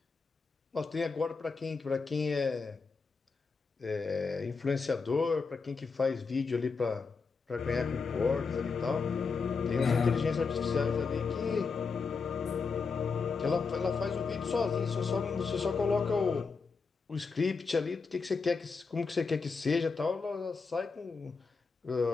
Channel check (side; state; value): right; quieter; 4.8 dB